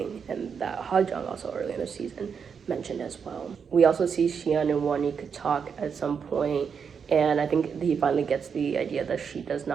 and that Ha-jung also early in the season mentioned as well. We also see Si-eun and Wanik talk at some point, and I think he finally gets the idea that she does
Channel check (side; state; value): left; quieter; 6.5 dB